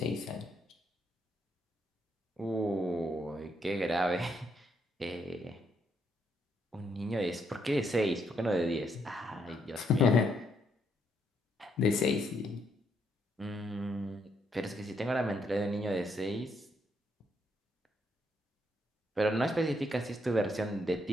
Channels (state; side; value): normal; both; correlation 0.75